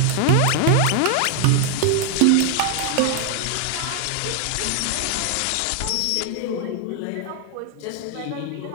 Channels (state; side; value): different; both; correlation 0.00